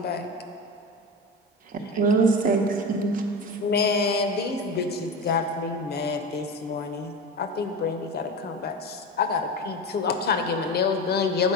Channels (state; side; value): normal; both; correlation 0.25